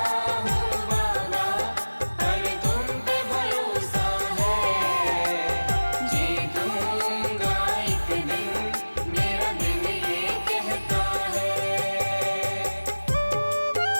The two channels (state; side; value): inverted; both; correlation -1.00